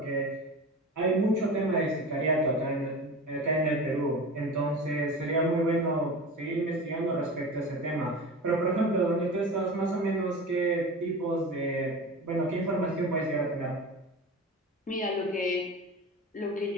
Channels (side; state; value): both; normal; correlation 0.31